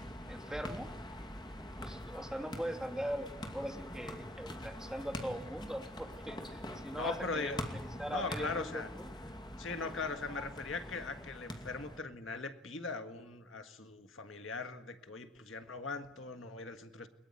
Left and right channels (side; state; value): both; normal; correlation 0.56